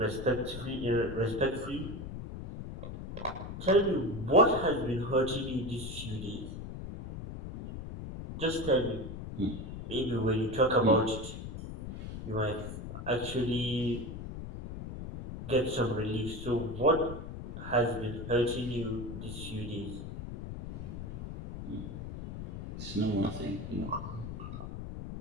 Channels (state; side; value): noise; left; rumble, 8 dB below the sound